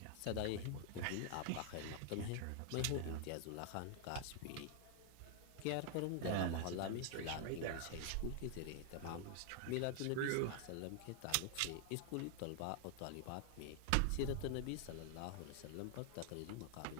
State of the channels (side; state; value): both; different; correlation 0.00